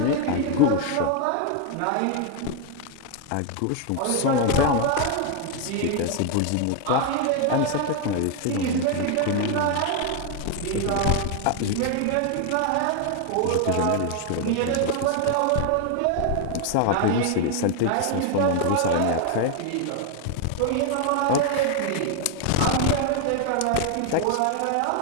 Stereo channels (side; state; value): both; different; correlation 0.01